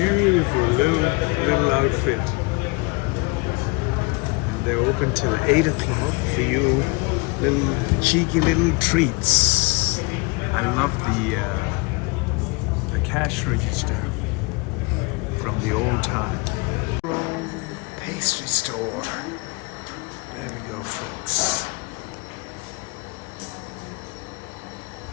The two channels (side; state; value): right; quieter; 27.9 dB